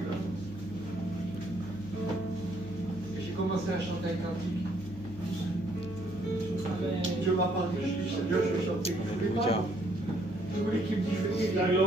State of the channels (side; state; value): left; noise; hum, 18 dB below the sound